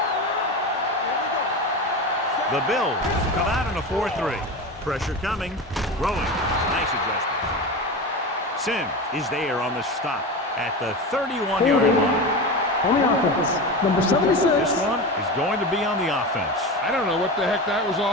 The Bills come out in a 4-3. Pressure coming. Throwing. Nice adjustment. Sims is there on the stop at the 31-yard line. On the offense, number 76. This one is going to be on the offense. I don't know what the heck that was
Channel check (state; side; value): normal; both; correlation 0.25